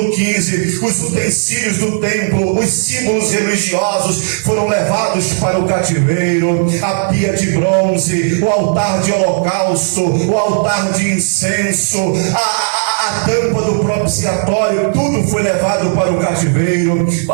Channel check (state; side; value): silent; left; digital silence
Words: 15, os utensílios do templo, os símbolos religiosos foram levados para o cativeiro. A pia de bronze, o altar de holocausto, o altar de incenso, a tampa do propiciatório, tudo foi levado para o cativeiro.